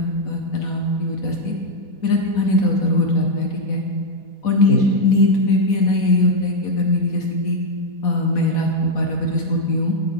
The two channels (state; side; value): late; right; 4.1 ms